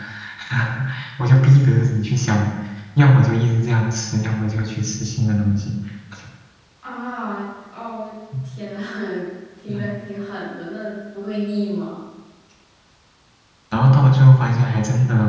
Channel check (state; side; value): identical; both; correlation 1.00